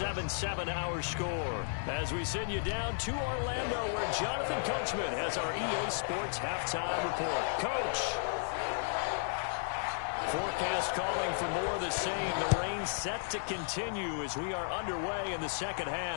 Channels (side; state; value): right; silent; digital silence